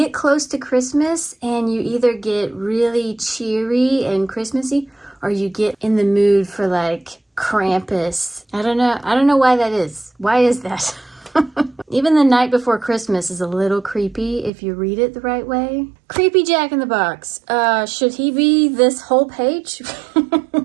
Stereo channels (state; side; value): drops out; left; at 14.5 s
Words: close to Christmas and you either get really cheery and Christmassy, or you get in the mood for like Krampus. I don't know why that is. Why is that? Even The Night Before Christmas is a little creepy if you read it the right way. Creepy Jack in the Box. Should he be this whole page?